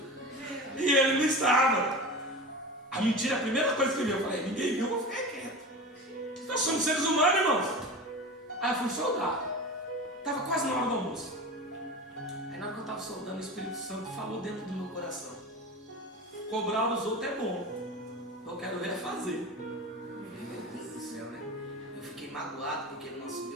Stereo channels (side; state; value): both; normal; correlation 0.30